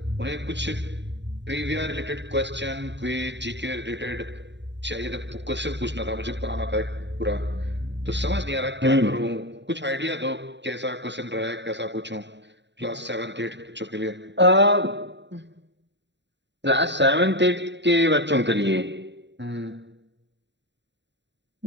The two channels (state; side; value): late; left; 0.52 ms